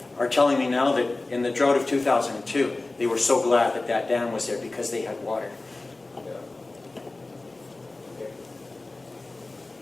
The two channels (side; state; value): right; quieter; 3.1 dB